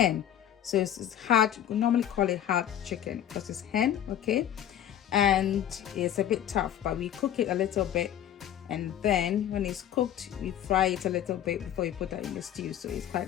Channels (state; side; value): quieter; right; 10.7 dB